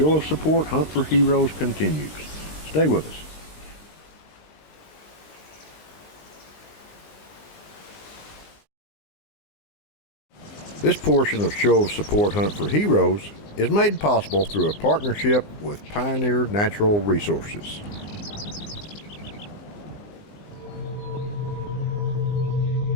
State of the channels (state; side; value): late; right; 20 ms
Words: of Support Hunt for Heroes continues. Stay with us. This portion of Show of Support Hunt for Heroes is made possible through a partnership with Pioneer Natural Resources.